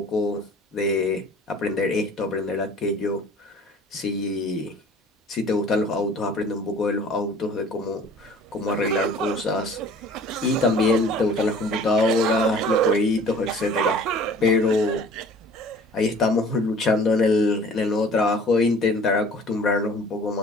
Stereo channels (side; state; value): both; normal; correlation 0.48